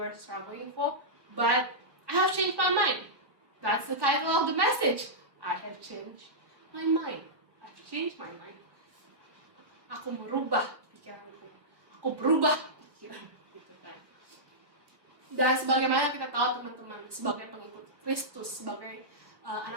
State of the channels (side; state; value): left; late; 1.4 ms